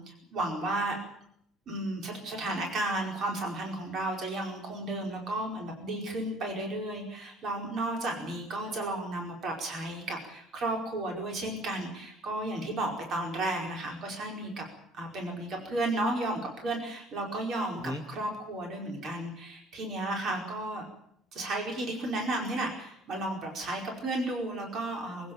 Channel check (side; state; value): both; normal; correlation 0.54